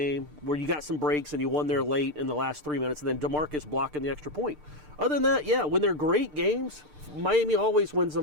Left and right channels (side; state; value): left; late; 6.7 ms